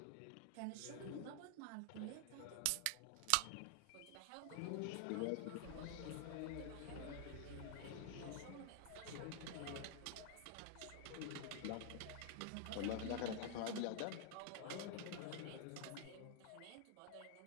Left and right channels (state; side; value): different; both; correlation 0.00